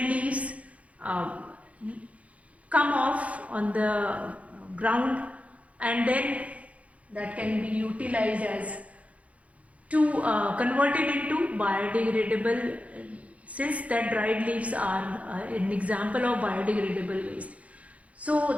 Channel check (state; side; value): late; left; 0.066 ms